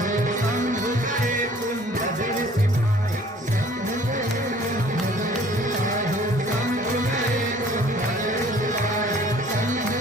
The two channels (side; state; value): both; normal; correlation 0.53